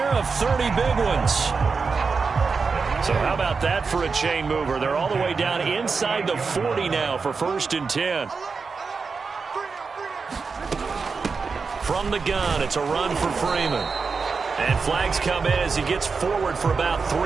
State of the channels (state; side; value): quieter; left; 4.9 dB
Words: of 30 big ones. So how about that for a chain mover? They're all the way down inside the 40 now for 1st and 10. From the gun, it's a run for Freeman. And flags come in as he gets forward for about